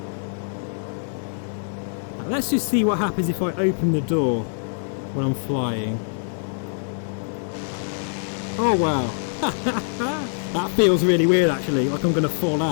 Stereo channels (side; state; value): right; silent; digital silence